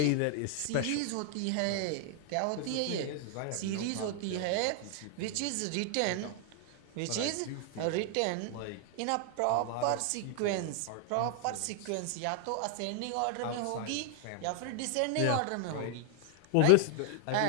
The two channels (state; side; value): different; both; correlation 0.00